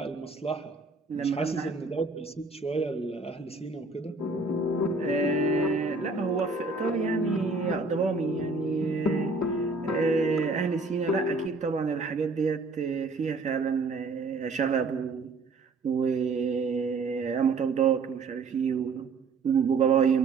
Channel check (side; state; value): left; quieter; 3.9 dB